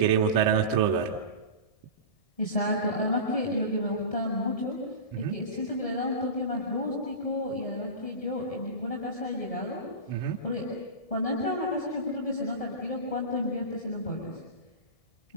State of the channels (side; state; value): right; late; 1.7 ms